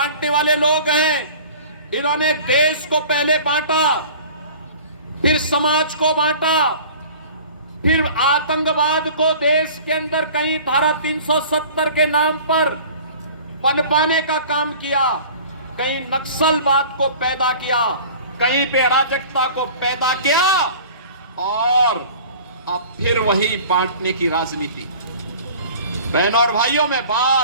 वाले लोग हैं। इन्होंने देश को पहले बांटा, फिर समाज को बांटा, फिर आतंकवाद को देश के अंदर कहीं धारा 370 के नाम पर पनपाने का काम किया, कहीं नक्सलवाद को पैदा किया, कहीं पे अराजकता को पैदा किया, और अब फिर वही बांटने की राजनीति। बहनों और भाइयों, मैं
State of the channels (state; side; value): inverted; both; correlation -0.44